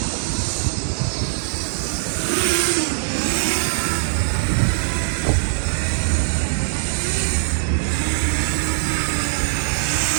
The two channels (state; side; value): silent; left; 63 dB below the other